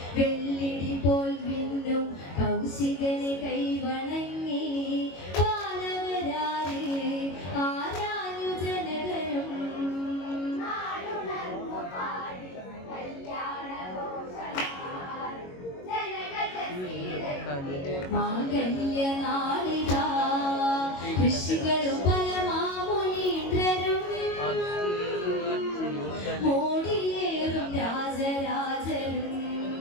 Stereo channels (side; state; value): right; late; 22 ms